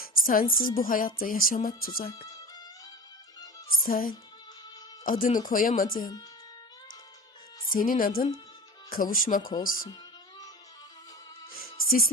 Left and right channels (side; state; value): both; normal; correlation 0.35